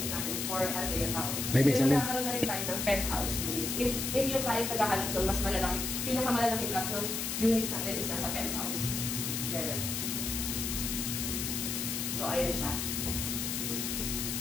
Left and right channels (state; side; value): noise; left; hiss, 2 dB below the sound